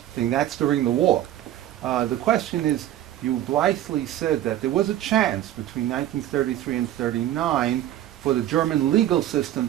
thing. That's during the war. The question is, you blithely said that there was a chance between 1933 and 1939 for the German legal system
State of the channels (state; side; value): quieter; left; 12.7 dB